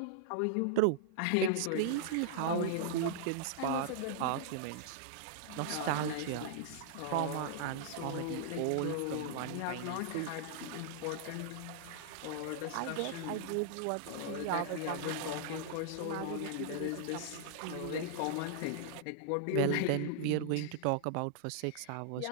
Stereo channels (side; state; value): both; different; correlation -0.01